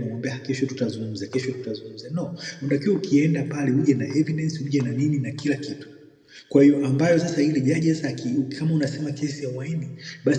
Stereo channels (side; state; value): both; identical; correlation 1.00